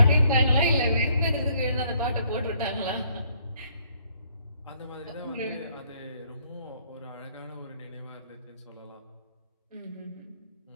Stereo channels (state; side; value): inverted; both; correlation -0.66